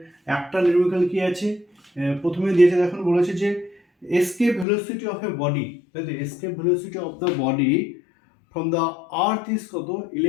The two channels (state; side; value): drops out; right; at 4.7 s